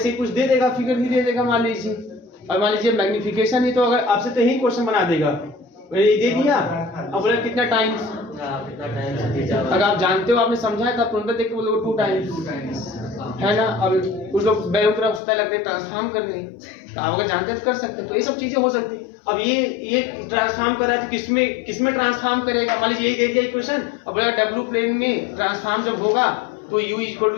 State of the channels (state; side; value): drops out; right; at 15.2 s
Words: कुछ दे देगा, फिगर ही दे देगा मान लीजिए, और मान लीजिए मैग्निफिकेशन ही, तो अगर आपसे तो यही क्वेश्चन बना देगा, ये दे दिया, अब बोले कितना टाइम्स, अगर आप जानते हो, आपने समझा है, तब तुरंत देख के बोलोगे 2 टाइम्स, है ना। अब कुछ लोग बेवकूफ होता है, लगते हैं ट्रांसफॉर्म करने, तो आप अगर जानते हैं तो कर सकते हैं। तो ये सब चीजें हो सकती। अब ये ट्रांसफॉर्म कर रहा है तो किसमें ट्रांसफॉर्म करेगा, मान लीजिए यही दे दिया इक्वेशन, अब बोला डब्ल्यू प्लेन में ट्रांसफॉर्म जब होगा तो u इक्वल टू